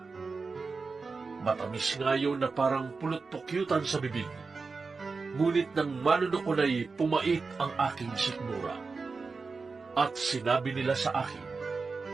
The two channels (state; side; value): quieter; left; 4.4 dB